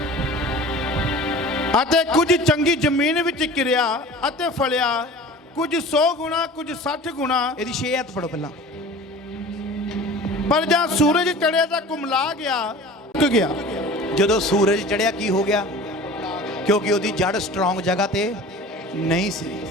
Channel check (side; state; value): both; normal; correlation 0.40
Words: ਅਤੇ ਕੁਝ ਚੰਗੀ ਜ਼ਮੀਨ ਵਿੱਚ ਕਿਰਿਆ ਅਤੇ ਫਲਿਆ, ਕੁਝ 100 ਗੁਣਾ, ਕੁਝ 60 ਗੁਣਾ। ਇਹਦੀ 6 ਹੱਥ ਪੜੋ ਪਹਿਲਾਂ। ਪਰ ਜਾਂ ਸੂਰਜ ਚੜਿਆ ਤਾਂ ਕੁਮਲਾ ਗਿਆ, ਸੁੱਕ ਗਿਆ। ਜਦੋਂ ਸੂਰਜ ਚੜਿਆ ਕੀ ਹੋ ਗਿਆ? ਕਿਉਂਕਿ ਉਹਦੀ ਜੜ ਸਟਰੋਂਗ ਜਗ੍ਹਾ ਤੇ ਨਹੀਂ ਸੀ।